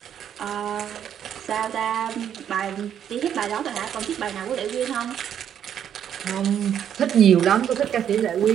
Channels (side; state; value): left; quieter; 9.3 dB